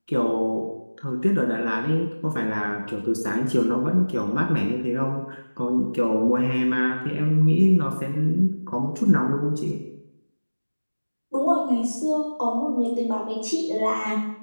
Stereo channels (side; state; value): both; inverted; correlation -1.00